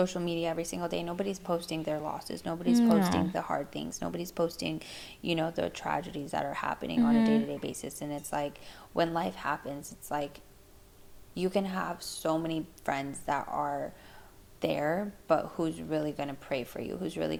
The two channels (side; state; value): both; identical; correlation 1.00